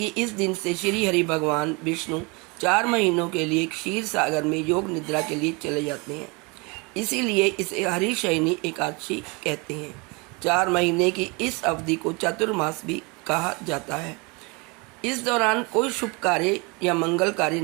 इस दिन से श्री हरि भगवान विष्णु 4 महीनों के लिए क्षीर सागर में योग निद्रा के लिए चले जाते हैं। इसीलिए इसे हरिशयनी एकादशी कहते हैं। 4 महीने की इस अवधि को चतुर्मास भी कहा जाता है। इस दौरान कोई शुभ कार्य या मंगल कार्य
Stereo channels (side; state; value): left; quieter; 28.6 dB